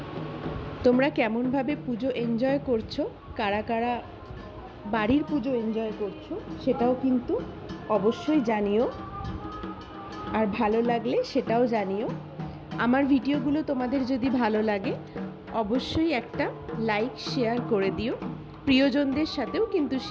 তোমরা কেমন ভাবে পুজো এনজয় করছো, কারা কারা বাড়ির পুজো এনজয় করছো সেটাও কিন্তু অবশ্যই জানিও। আর ভালো লাগলে সেটাও জানিও। আমার ভিডিওগুলো তোমাদের যদি ভালো লাগে অবশ্যই একটা লাইক শেয়ার করে দিও। প্রিয়জনদের সাথেও কিন্তু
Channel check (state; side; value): identical; both; correlation 1.00